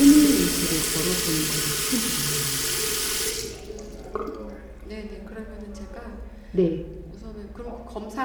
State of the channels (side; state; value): both; identical; correlation 1.00